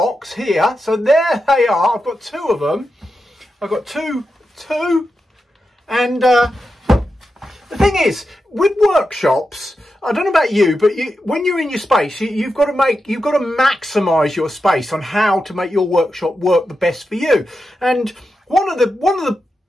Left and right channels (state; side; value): normal; both; correlation 0.89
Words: here. So there they are. I've got two of them. I've got two. And the thing is, with workshops, I don't know about you, but when you're in your space, you've got to maximise your space on how to make your workshop work the best for you. And one of the